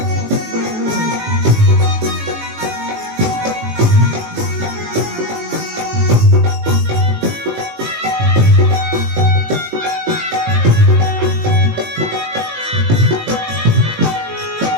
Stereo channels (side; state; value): left; late; 18 ms